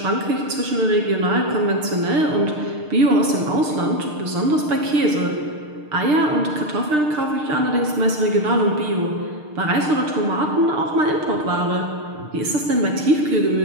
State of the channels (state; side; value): late; left; 6.6 ms